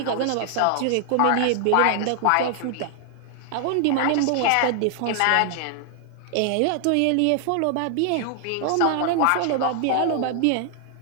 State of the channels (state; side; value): different; both; correlation 0.00